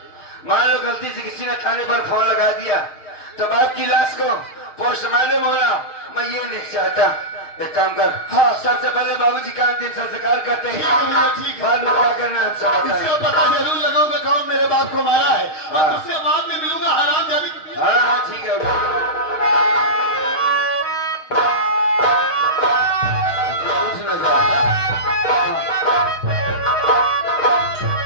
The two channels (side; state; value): right; late; 6.5 ms